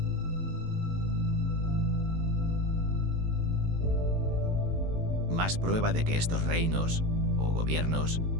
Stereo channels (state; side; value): late; left; 18 ms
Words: Más prueba de que estos reinos o gobiernos